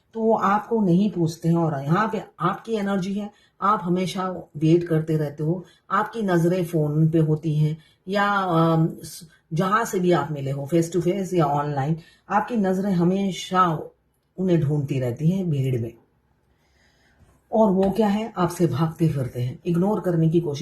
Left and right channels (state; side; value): identical; both; correlation 1.00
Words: तो वो आपको नहीं पूछते हैं। और यहाँ पे आपकी एनर्जी है, आप हमेशा वेट करते रहते हो, आपकी नजरें फोन पे होती हैं या जहां से भी आप मिले हो, फेस टू फेस या ऑनलाइन, आपकी नजरें हमेशा उन्हें ढूंढती रहती हैं भीड़ में। और वो क्या है, आपसे भागते फिरते हैं, इग्नोर करने की